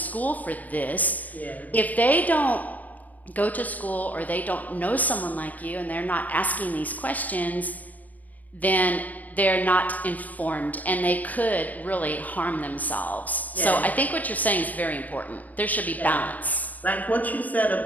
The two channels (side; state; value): right; late; 0.077 ms